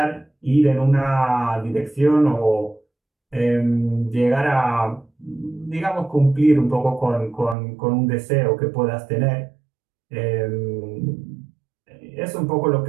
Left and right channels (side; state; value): left; drops out; at 7.6 s